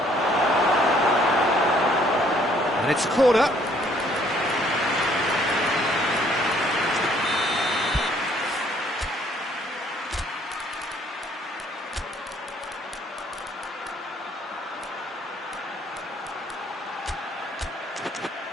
And it's a corner.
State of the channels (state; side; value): normal; both; correlation 0.63